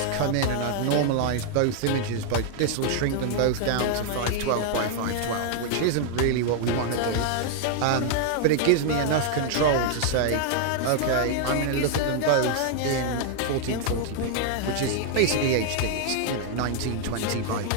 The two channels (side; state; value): both; different; correlation 0.00